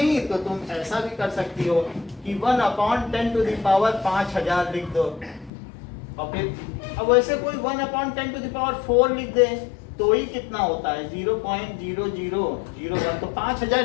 तो तुम ऐसा भी कर सकती हो कि 1 upon 10 to the power 5000 लिख दो, और फिर अब वैसे कोई 1 upon 10 to the power 4 लिख दे, तो ही कितना होता है? 0.0001, तो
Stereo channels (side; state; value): right; drops out; at 5.5 s